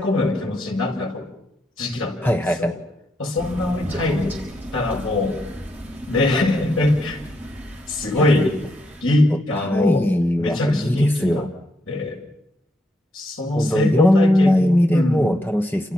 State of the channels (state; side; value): normal; both; correlation 0.80